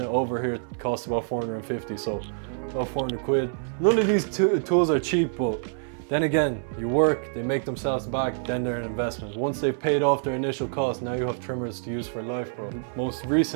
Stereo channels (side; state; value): left; silent; 61 dB below the other